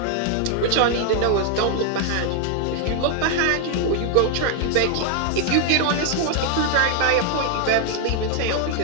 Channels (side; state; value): both; different; correlation 0.00